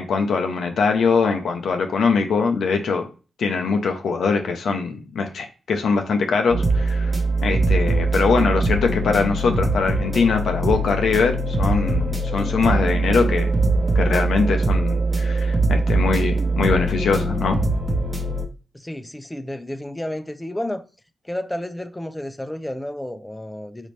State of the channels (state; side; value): normal; both; correlation 0.82